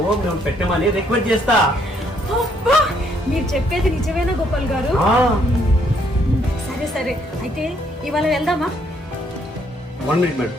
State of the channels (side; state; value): both; normal; correlation 0.69